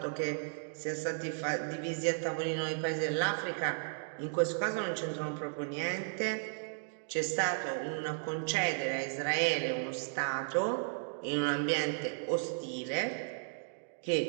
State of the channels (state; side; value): silent; left; digital silence